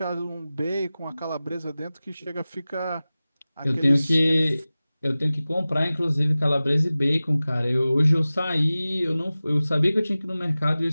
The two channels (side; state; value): both; inverted; correlation -0.97